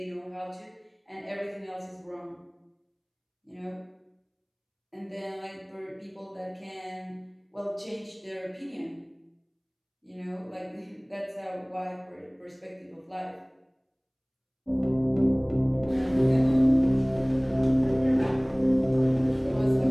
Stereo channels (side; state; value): both; identical; correlation 1.00